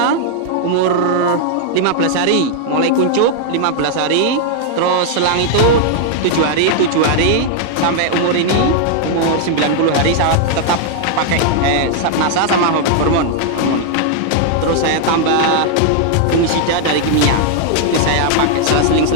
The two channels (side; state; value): both; different; correlation -0.01